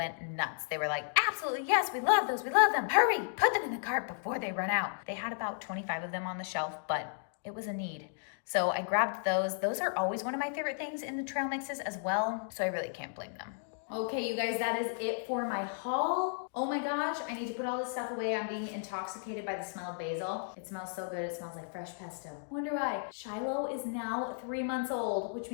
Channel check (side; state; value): right; silent; digital silence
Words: nuts. They were like, absolutely, yes, we love those. We love them. Hurry, put them in the cart before they run out. They had about 25 of them on the shelf, but it was a need. So I grabbed those. Those are always one of my favorite things in the trail mixes as well. So I really can't blame them. Okay, you guys, that is it for my haul. Oh my gosh, I need to put all this stuff away. I'm being intoxicated by the smell of basil. It smells so good. It smells like fresh pesto. Wonder why. Shiloh is now 3 months old, which